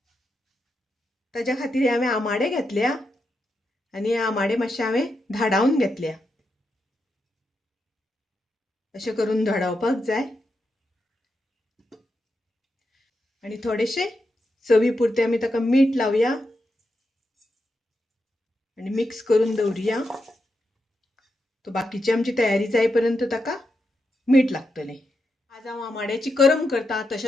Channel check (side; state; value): both; normal; correlation 0.85